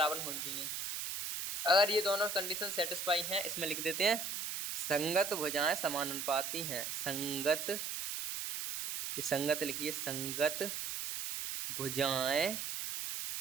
होनी चाहिए। अगर ये दोनों कंडीशन सेटिस्फाई हैं, इसमें लिख देते हैं संगत भुजाएं समानुपाती हैं, संगत, ये संगत लिखिए, संगत भुजाएं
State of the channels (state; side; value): noise; right; hiss, 4 dB below the sound